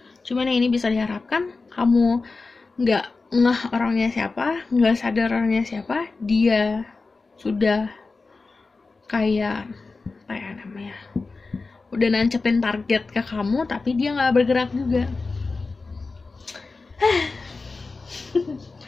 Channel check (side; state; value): right; quieter; 3.9 dB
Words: Cuman yang ini bisa diharapkan, kamu nggak ngeh orangnya siapa, nggak sadar orangnya siapa, dia sudah kayak apa ya namanya, udah nancepin target ke kamu tapi dia nggak bergerak juga.